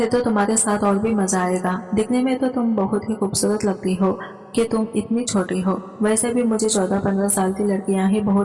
तो तुम्हारे साथ और भी मजा आएगा, दिखने में तो तुम बहुत ही खूबसूरत लगती हो कि तुम इतनी छोटी हो। वैसे भी मुझे 14-15 साल की लड़कियां ही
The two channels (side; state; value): both; identical; correlation 1.00